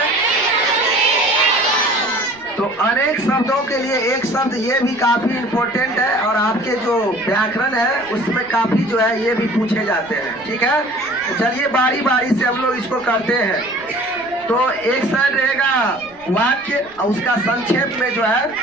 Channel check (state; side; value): noise; right; rumble, 27 dB below the sound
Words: तो अनेक शब्दों के लिए एक शब्द ये भी काफी इम्पोर्टेंट है और आपके जो व्याकरण है उसमें काफी जो है ये भी पूछे जाते हैं। ठीक है, तो चलिए बारी बारी से हम लोग इसको करते हैं। तो एक साइड रहेगा वाक्य और उसका संक्षेप में जो है